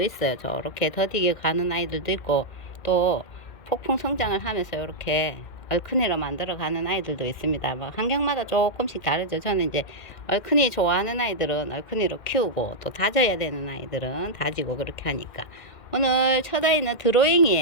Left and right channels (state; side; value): late; right; 2.1 ms